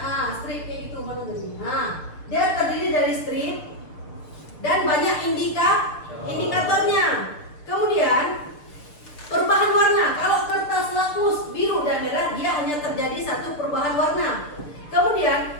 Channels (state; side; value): late; right; 6.7 ms